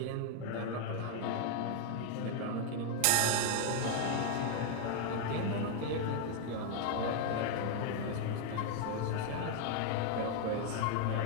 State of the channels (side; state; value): both; different; correlation 0.00